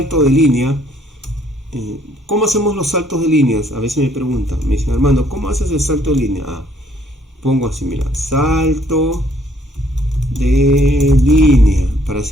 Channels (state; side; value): normal; both; correlation 0.64